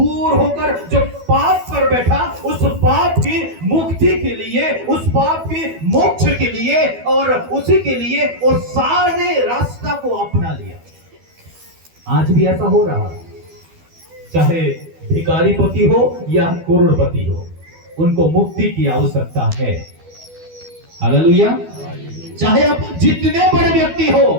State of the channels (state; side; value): late; left; 12 ms